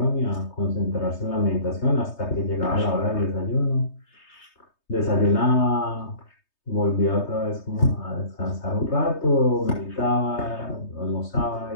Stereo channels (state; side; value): late; right; 3.2 ms